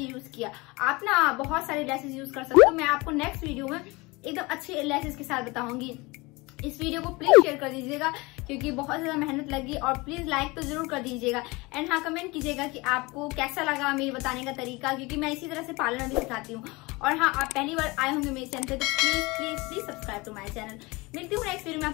यूज किया। आप ना बहुत सारे लैसेस यूज कर सकते हो, मैं आपको नेक्स्ट वीडियो में एकदम अच्छे लैसेस के साथ बताऊंगी। इस वीडियो को प्लीज शेयर कर दीजिएगा क्योंकि बहुत ज्यादा मेहनत लगी, और प्लीज लाइक तो जरूर कर दीजिएगा। एंड हाँ, कमेंट कीजिएगा कि आपको कैसा लगा मेरे बताने का तरीका, क्योंकि मैं इसी तरह से पार्लर भी सिखाती हूँ। और हाँ, आप पहली बार आए होंगे मेरे चैनल पे तो please please please subscribe to my channel. मिलती हूँ नेक्स्ट वीडियो में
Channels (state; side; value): quieter; right; 24.2 dB